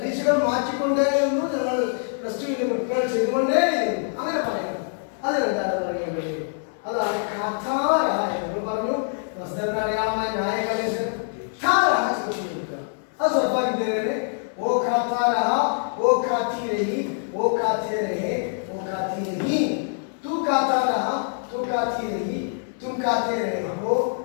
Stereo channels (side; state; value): right; silent; 58 dB below the other